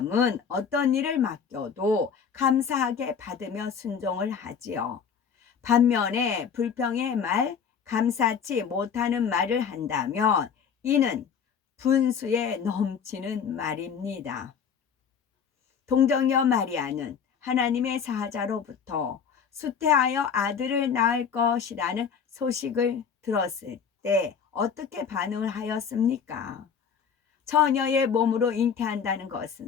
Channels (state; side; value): quieter; right; 6.9 dB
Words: 어떤 일을 맡겨도 감사하게 받으며 순종을 하지요. 반면에 불평의 말, 감사치 못하는 말을 한다면 이는 분수에 넘치는 말입니다. 동정녀 마리아는 하나님의 사자로부터 수태하여 아들을 낳을 것이라는 소식을 들었을 때 어떻게 반응을 하였습니까? 처녀의 몸으로 잉태한다는